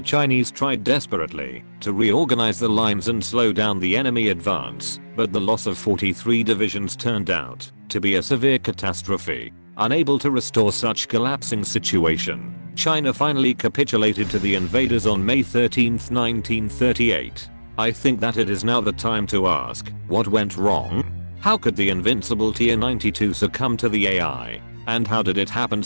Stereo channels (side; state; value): both; inverted; correlation -1.00